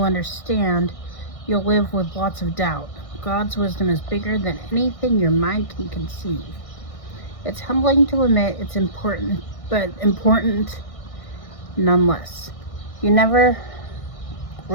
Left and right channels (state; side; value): late; right; 1.6 ms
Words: understand, you'll live with lots of doubt. God's wisdom is bigger than anything your mind can conceive. It's humbling to admit it's important, but important nonetheless. You never